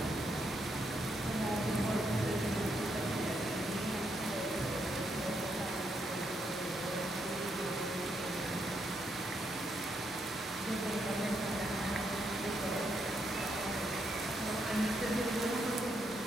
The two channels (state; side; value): normal; both; correlation 0.78